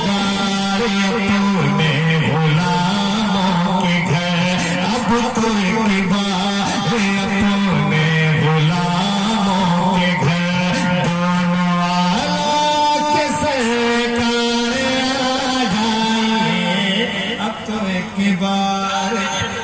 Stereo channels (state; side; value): identical; both; correlation 1.00